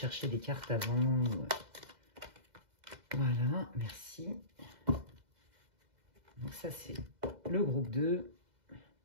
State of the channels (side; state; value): left; late; 2.0 ms